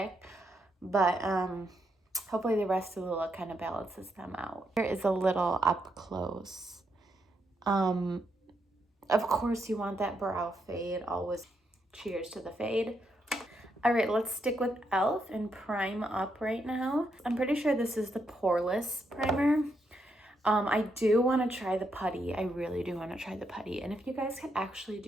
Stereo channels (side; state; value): both; normal; correlation 0.80